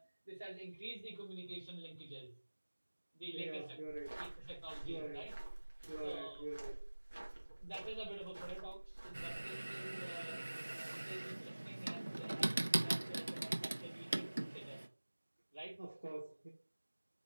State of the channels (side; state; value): both; inverted; correlation -1.00